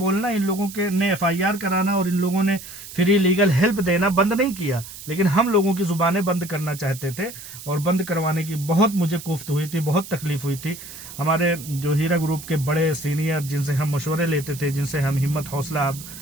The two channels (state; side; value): noise; right; hiss, 14 dB below the sound